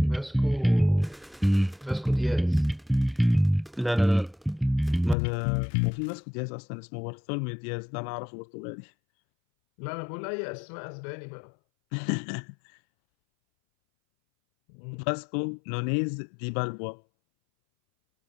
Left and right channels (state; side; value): drops out; right; at 5.2 s